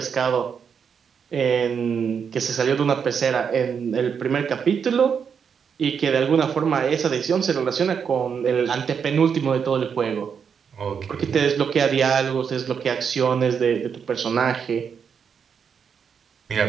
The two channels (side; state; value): left; quieter; 6.9 dB